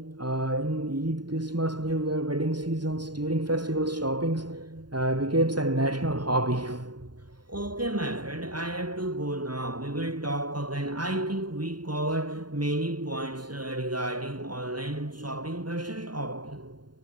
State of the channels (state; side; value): late; left; 0.70 ms